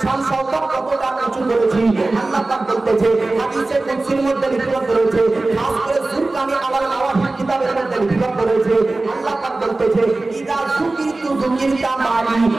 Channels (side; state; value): left; quieter; 3.1 dB